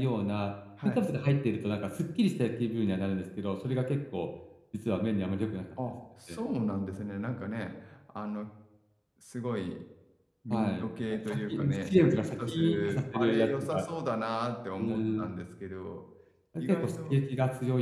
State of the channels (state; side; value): identical; both; correlation 1.00